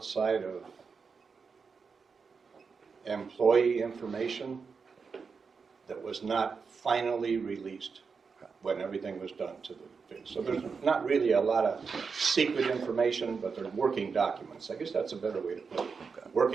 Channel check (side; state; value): left; quieter; 5.3 dB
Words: of employee information that was not finally released when everything was done to the thing. So there's not really a lot of secret information, but they're working documents. I guess that's a better way to put it.